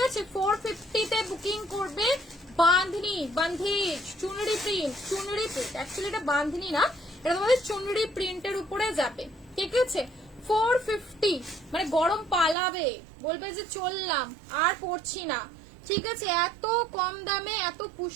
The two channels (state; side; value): drops out; left; at 12.6 s